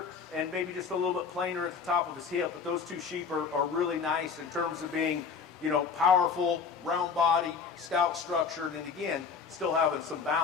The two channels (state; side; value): quieter; right; 5.8 dB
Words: and maybe just a little bit plainer at the top of his hip. But those two sheep are really nice in terms of being, you know, powerful, round body, stout structured, and again, still having some